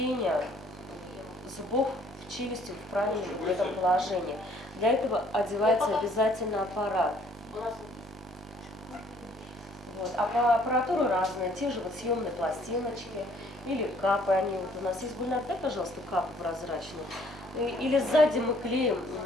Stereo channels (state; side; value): normal; both; correlation 0.61